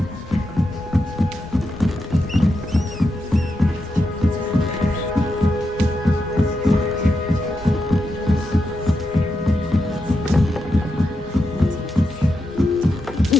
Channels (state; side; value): normal; both; correlation 0.86